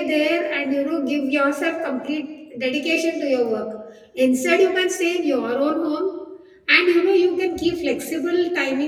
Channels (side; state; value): both; identical; correlation 1.00